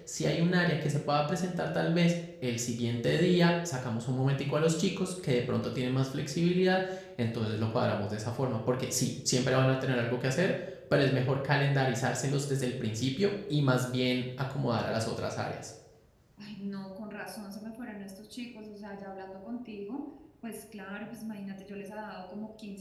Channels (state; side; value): identical; both; correlation 1.00